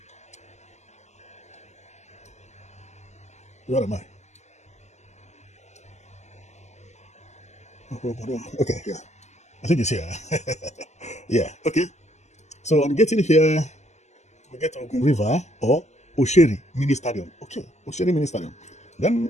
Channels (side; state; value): right; late; 0.33 ms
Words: Where am I? Okay, yeah. I think it's here. Yeah, okay. So on getting here, we get to Ogun River or Osheri Mini Stadium. Okay, Osheri Mini Stadium.